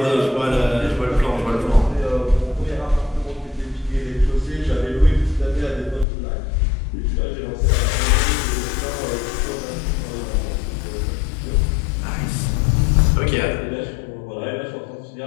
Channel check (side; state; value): right; drops out; at 6.1 s